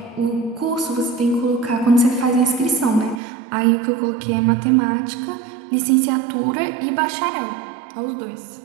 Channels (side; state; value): left; drops out; at 3.2 s